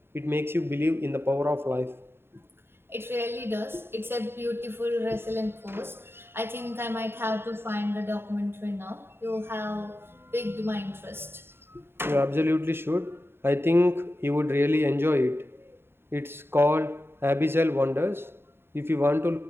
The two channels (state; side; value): late; left; 0.11 ms